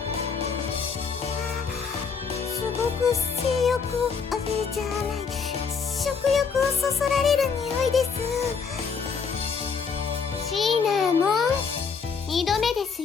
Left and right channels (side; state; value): right; quieter; 5.7 dB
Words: すごく性欲をじゃない、食欲をそそられる匂いです。シナモン、2度目です